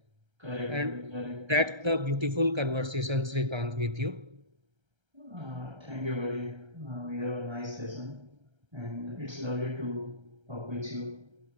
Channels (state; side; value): late; left; 1.3 ms